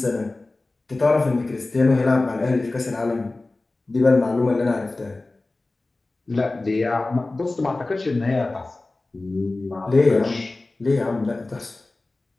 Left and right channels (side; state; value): right; quieter; 3.1 dB